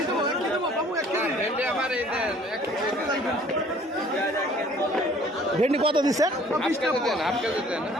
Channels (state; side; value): normal; both; correlation 0.54